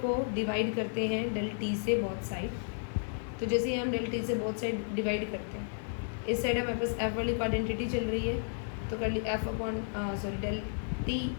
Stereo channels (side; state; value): right; silent; digital silence